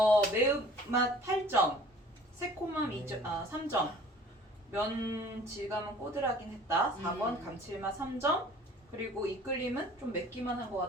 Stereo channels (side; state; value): both; normal; correlation 0.50